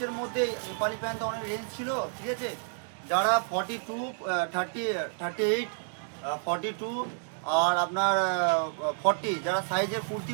মধ্যে নেপালি প্যান্ট অনেক রেঞ্জ ছিল, ঠিক আছে। যারা 42, 38, 42 আর আপনার 40 যারা সাইজের কুর্তি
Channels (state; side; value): silent; left; digital silence